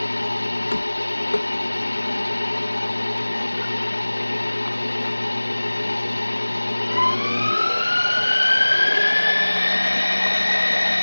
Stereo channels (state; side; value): inverted; both; correlation -1.00